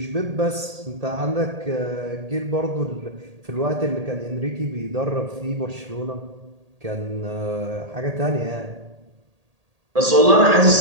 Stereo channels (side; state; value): left; late; 1.8 ms